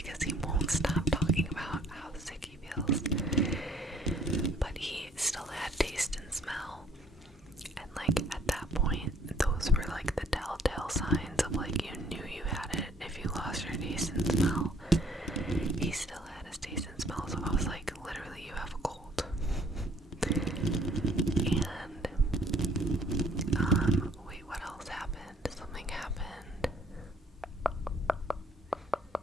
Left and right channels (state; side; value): normal; both; correlation 0.60